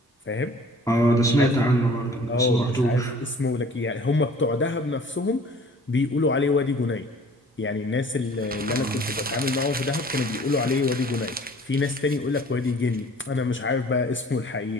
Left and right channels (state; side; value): normal; both; correlation 0.50